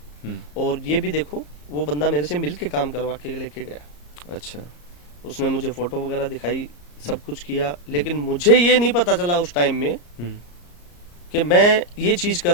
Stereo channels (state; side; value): late; right; 34 ms